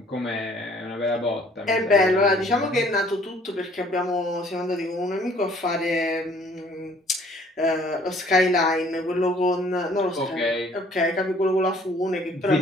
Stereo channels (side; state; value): both; normal; correlation 0.57